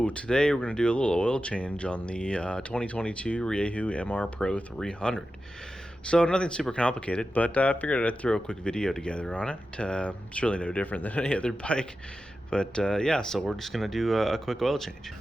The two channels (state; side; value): normal; both; correlation 0.92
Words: today we're going to do a little oil change on the 2022 Rieju MR Pro 300. So nothing super complicated, but I figured I'd throw a quick video together on it. It's really no different than any other bike. But yeah, so we're just going to do a quick oil change.